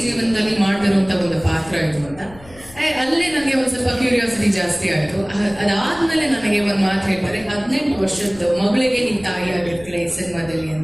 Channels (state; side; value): noise; left; rumble, 21 dB below the sound